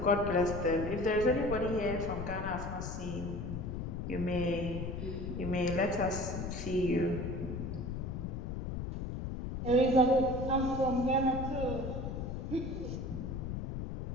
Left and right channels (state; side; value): noise; left; rumble, 5 dB below the sound